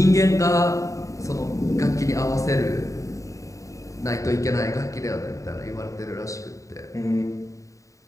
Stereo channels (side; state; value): right; late; 0.16 ms